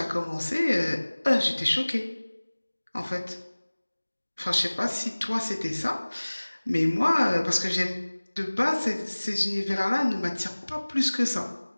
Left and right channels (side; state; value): both; inverted; correlation -1.00